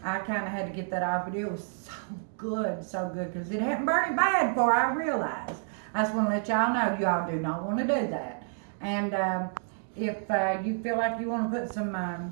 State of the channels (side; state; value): left; silent; digital silence